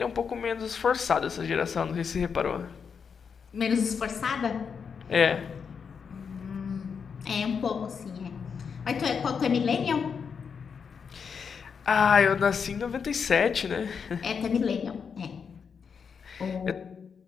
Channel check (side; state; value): right; quieter; 6.3 dB